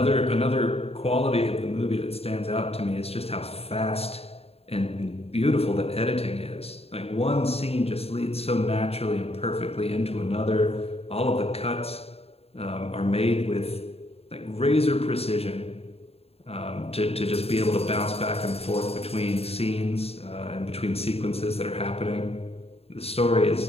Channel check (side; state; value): right; late; 0.29 ms